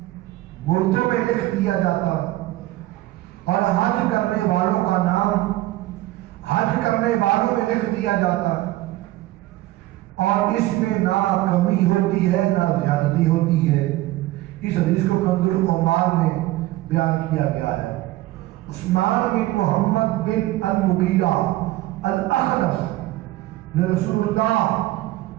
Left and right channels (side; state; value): left; quieter; 17.0 dB